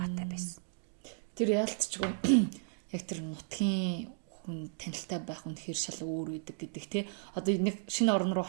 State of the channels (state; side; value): silent; left; digital silence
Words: байсан. Тэр яалтчгүй яг тэр нутгийн хүн танилтай байх үнэхээр шал өөр үүдэг гэдэг тий. Одоо нэг шинэ орн руу